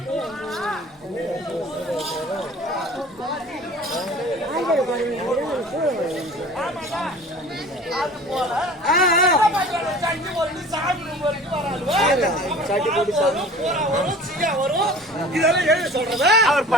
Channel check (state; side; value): normal; both; correlation 0.44